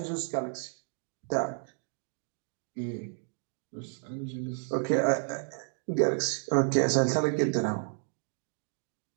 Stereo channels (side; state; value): left; silent; 57 dB below the other